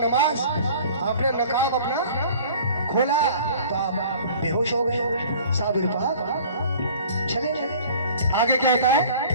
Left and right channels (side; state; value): both; inverted; correlation -0.47